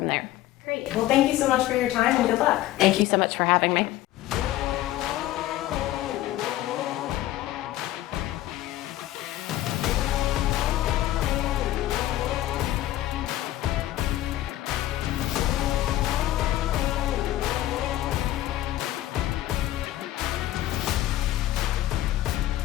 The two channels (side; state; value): right; quieter; 14.6 dB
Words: there. Great. Well, thank you so much for your time and good luck. Thank you so much for having me.